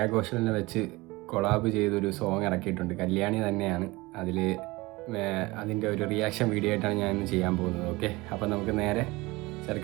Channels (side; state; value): left; quieter; 21.8 dB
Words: ഘോഷലിനെ വെച്ച് കൊളാബ് ചെയ്തൊരു സോങ് ഇറക്കിയിട്ടുണ്ട്. കല്യാണി തന്നെയാണ് അതിൽ. അതിൻ്റെ ഒരു റിയാക്ഷൻ വീഡിയോ ആയിട്ടാണ് ഞാൻ ഇന്ന് ചെയ്യാൻ പോകുന്നത്. ഓക്കെ, അപ്പം നമുക്ക് നേരെ